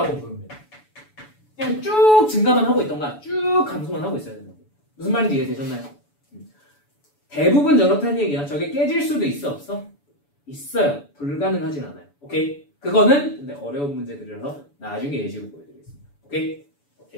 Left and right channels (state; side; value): late; right; 7.0 ms